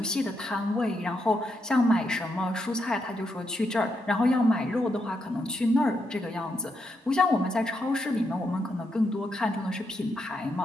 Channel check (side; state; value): both; normal; correlation 0.81